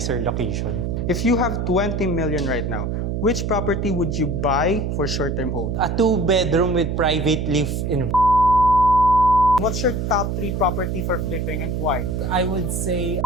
location. If you have 20 million right now, which property would you buy for short-term hold? A 2-bedroom with private live in. What's your top 3 property for flipping and why? I would say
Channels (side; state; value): right; noise; hum, 2 dB below the sound